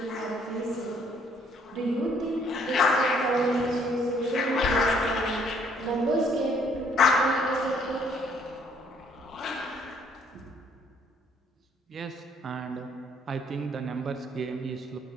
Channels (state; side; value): normal; both; correlation 0.64